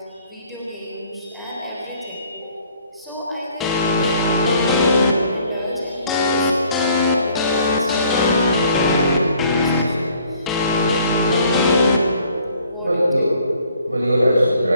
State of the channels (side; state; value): both; inverted; correlation -0.60